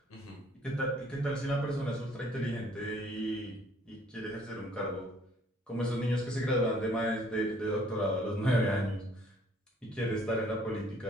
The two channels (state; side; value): normal; both; correlation 0.60